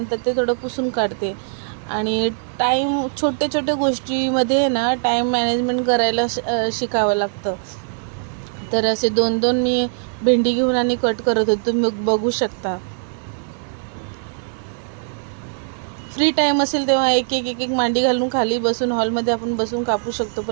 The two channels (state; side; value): silent; left; digital silence